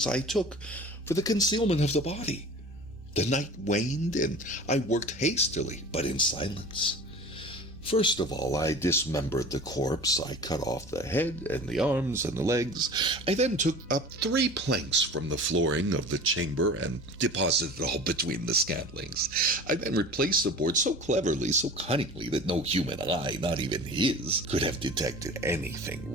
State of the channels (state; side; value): normal; both; correlation 0.39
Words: I took for the concealment of the body. The night waned, and I worked hastily, but in silence. First of all, I dismembered the corpse. I cut off the head and the arms and the legs. I then took up 3 planks from the flooring of the chamber and deposited it all between the scantlings. I then replaced the board so cleverly, so cunningly, that no human eye, not even his, could have detected anything